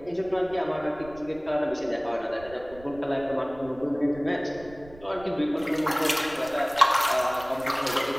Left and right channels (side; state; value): right; noise; rumble, 21 dB below the sound